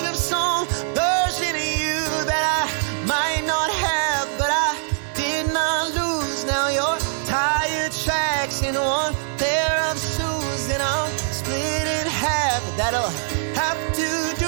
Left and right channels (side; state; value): left; silent; digital silence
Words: of some version of you that I might not have, but I did not lose. Now your tire tracks in one pair of shoes, and I'm split in half. That'll have to